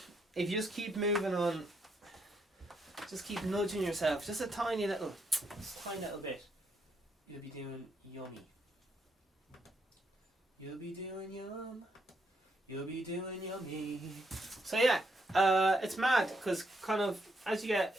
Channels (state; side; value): normal; both; correlation 0.77